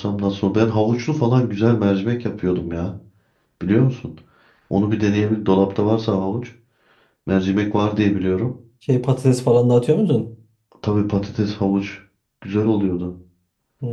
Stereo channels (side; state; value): both; identical; correlation 1.00